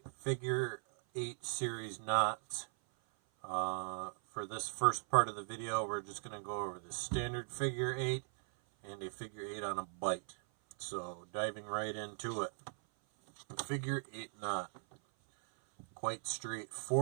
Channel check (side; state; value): left; silent; 52 dB below the other